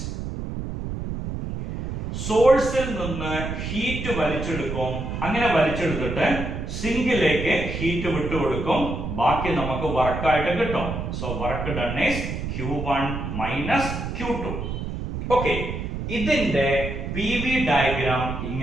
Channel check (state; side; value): noise; right; rumble, 5 dB below the sound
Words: സോഴ്സിൽ നിന്ന് ഹീറ്റ് വലിച്ചെടുക്കും. അങ്ങനെ വലിച്ചെടുത്തിട്ട് സിങ്കിലേക്ക് ഹീറ്റ് വിട്ടുകൊടുക്കും. ബാക്കി നമുക്ക് വർക്കായിട്ട് കിട്ടും. So work done is Q1 minus Q2. Okay, ഇതിന്റെ PV ഡയഗ്രാം